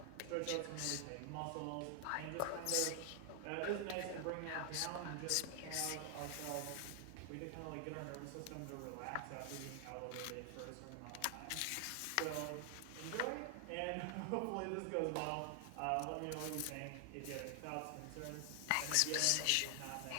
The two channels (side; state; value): both; different; correlation 0.00